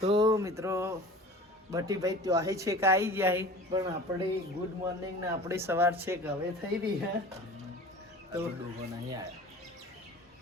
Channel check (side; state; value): both; normal; correlation 0.40